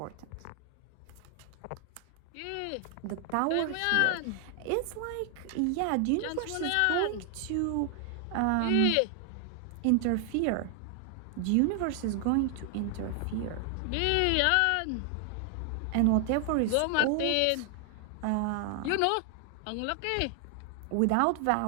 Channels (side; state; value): both; different; correlation 0.00